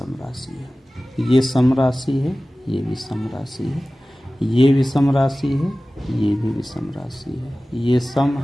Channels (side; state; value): both; normal; correlation 0.97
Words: राशि है। ये सम राशि है, ये विषम राशि है। ये विषम राशि है, ये भी विषम राशि है। ये सम